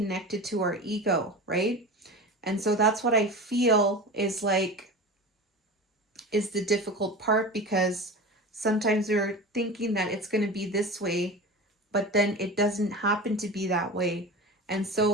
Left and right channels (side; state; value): both; normal; correlation 0.30